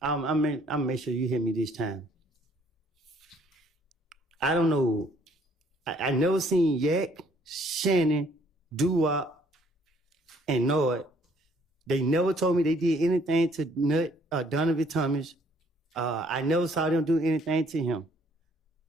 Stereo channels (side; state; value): both; normal; correlation 0.63